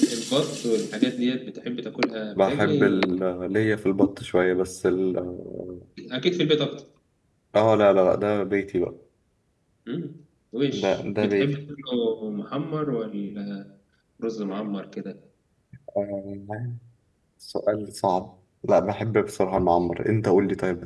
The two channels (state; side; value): identical; both; correlation 1.00